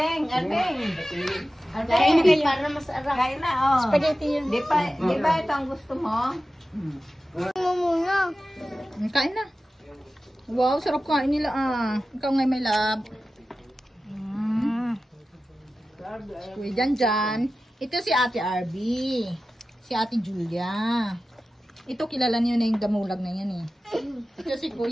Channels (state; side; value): normal; both; correlation 0.94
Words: Arbeng. Kain na kayo. Para masarap. Kain na, oh. Spaghetti yun. Di ba ito ang gusto mo? Kain na. Wow, sarap kain nila Ikaw nga may lab. Kuya Janjan. Ito si Ate Arby. Si Ate Julia. Ito kilala niyo na yung damulag na yan Ito si